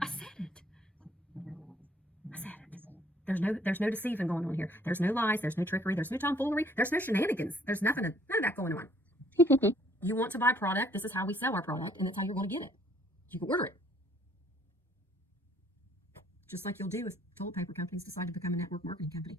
I said it. There's no deceiving going on here. There's no lies. There's no trickery. There's no tomfoolery. There's no shenanigans. There's none of that going on. You want to buy product, this is how we sell our product, and that's how you're going to get it. You can order it. Just like you'll do if toilet paper companies decide to become a network marketing company,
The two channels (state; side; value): normal; both; correlation 0.62